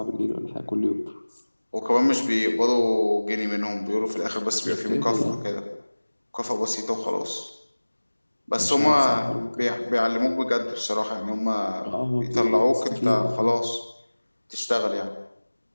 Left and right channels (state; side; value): inverted; both; correlation -1.00